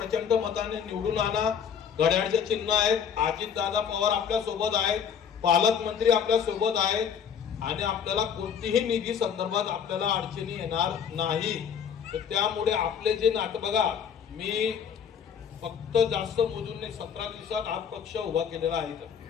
मताने निवडून आणा. घड्याळचे चिन्ह आहेत, अजितदादा पवार आपल्या सोबत आहेत, पालकमंत्री आपल्या सोबत आहेत आणि आपल्याला कोणतीही निधी संदर्भात आपल्याला अडचणी येणार नाही. तर त्यामुळे आपले जे नातं बघा, मी फक्त जास्त मोजून नाही, 17 दिवसात हा पक्ष उभा केलेला आहे.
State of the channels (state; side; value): quieter; right; 7.7 dB